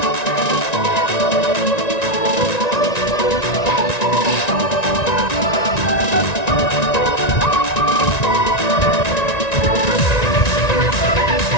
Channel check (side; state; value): right; late; 1.9 ms